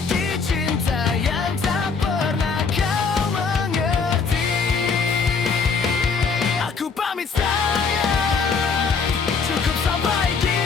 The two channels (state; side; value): quieter; right; 5.1 dB